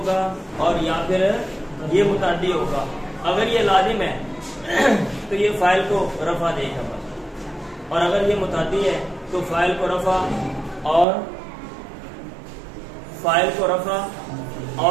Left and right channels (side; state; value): left; drops out; at 11.1 s